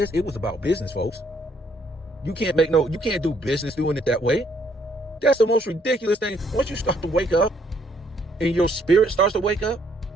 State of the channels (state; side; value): normal; both; correlation 0.68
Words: It was about business, folks. You can't do business doing it that way. That's the most ridiculous thing. Once you start to wake up and your spirit starts to wake up,